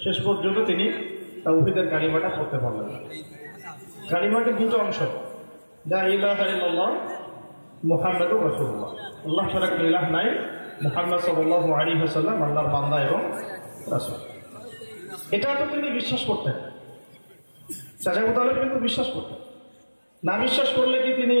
শেষ পর্যন্ত তিনি তাওহীদের কালিমাটা পড়তে পারলেন। কালিমাটির দুটো অংশ, লা ইলাহা ইল্লাল্লাহ মুহাম্মাদুর রাসূলুল্লাহ, আল্লাহ ছাড়া কোনো ইলাহ নাই, মুহাম্মদ সাল্লাল্লাহু আলাইহি ওয়াসাল্লাম আল্লাহর বান্দা এবং রাসূল। এটা তো তিনি বিশ্বাস করতেন, চাচা আবু তালেব কিন্তু বিশ্বাস করতেন। না বিশ্বাস করলে কি তিনি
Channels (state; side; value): inverted; both; correlation -1.00